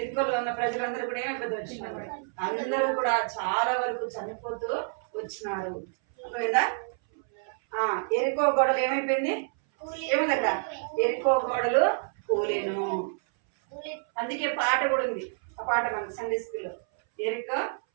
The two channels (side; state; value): left; silent; 59 dB below the other